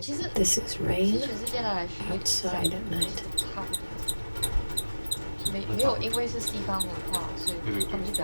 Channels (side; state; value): both; inverted; correlation -1.00